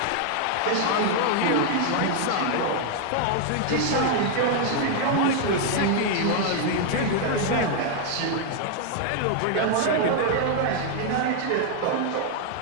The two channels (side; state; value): both; different; correlation 0.00